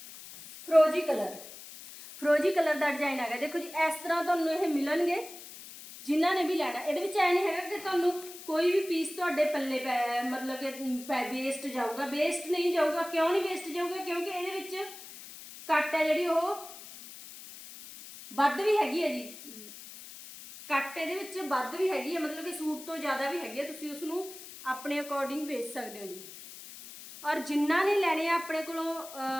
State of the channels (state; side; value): noise; left; hiss, 15 dB below the sound